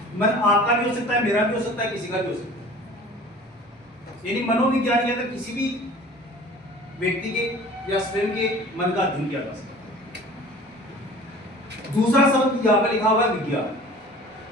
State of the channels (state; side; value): normal; both; correlation 0.44